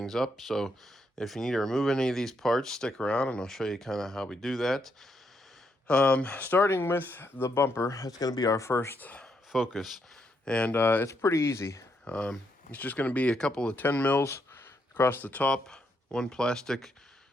up. So if you need to remove any of these parts, stick around and I'll show you kind of how we do that. Starting with the bumper, that's going to be our first focus. And it's pretty easy. It's just going to be a couple of 10 mils across the top, one plastic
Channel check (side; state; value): both; normal; correlation 0.77